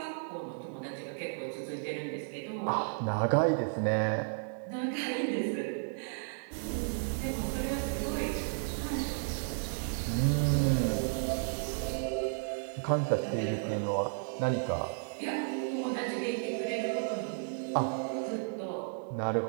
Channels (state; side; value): silent; left; digital silence